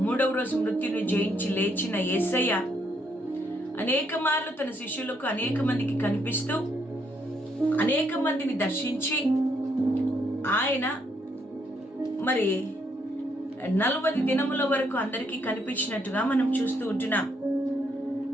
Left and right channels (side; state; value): both; normal; correlation 0.73